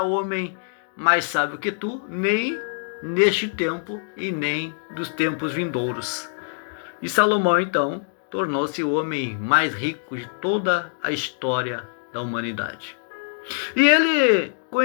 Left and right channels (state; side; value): silent; right; digital silence